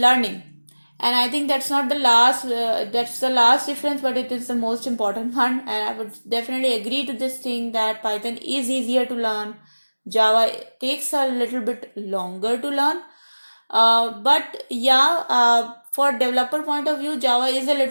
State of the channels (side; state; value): both; inverted; correlation -1.00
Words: and I think that's not the last. That's the last difference, but it is the most important one. And I would definitely agree to this thing that Python is easier to learn. Java takes a little bit longer to learn. But yeah, for developer point of view, Java is a